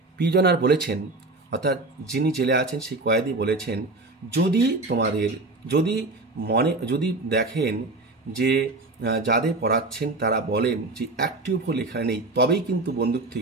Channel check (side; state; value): left; quieter; 3.1 dB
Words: প্রিজনার বলেছেন, অর্থাৎ যিনি জেলে আছেন সেই কয়েদি বলেছেন, যদি দেখেন যে যাদের পড়াচ্ছেন তারা বলেন যে একটিও ভুল এখানে নেই, তবেই কিন্তু বন্দুক